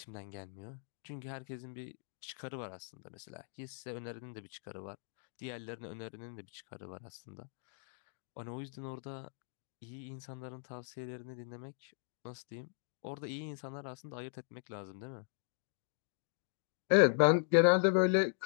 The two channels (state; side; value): silent; right; digital silence